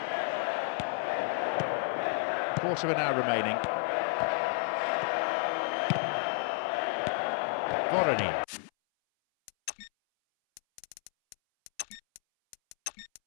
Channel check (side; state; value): right; silent; 57 dB below the other